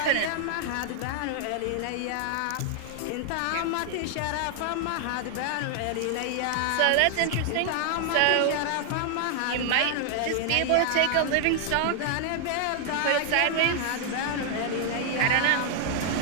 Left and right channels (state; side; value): different; both; correlation 0.00